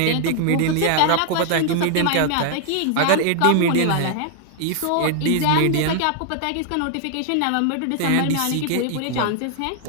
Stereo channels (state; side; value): different; both; correlation 0.00